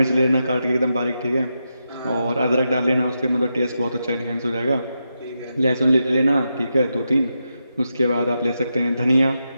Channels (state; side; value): inverted; both; correlation -0.86